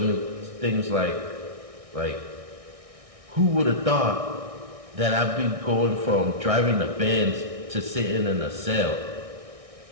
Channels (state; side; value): late; left; 1.6 ms